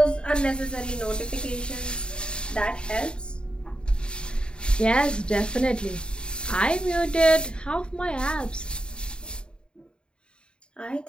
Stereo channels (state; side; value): late; right; 0.051 ms